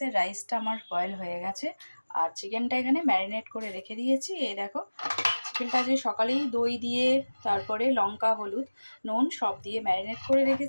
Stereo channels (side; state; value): both; inverted; correlation -1.00